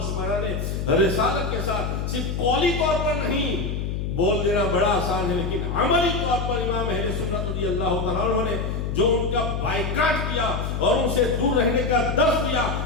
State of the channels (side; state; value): left; noise; hum, 2 dB below the sound